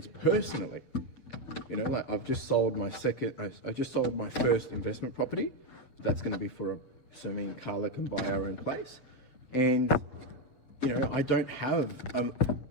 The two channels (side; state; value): right; late; 7.6 ms